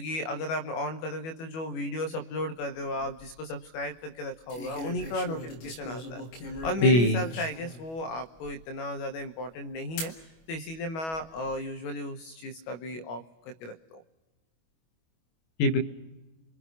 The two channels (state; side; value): late; right; 25 ms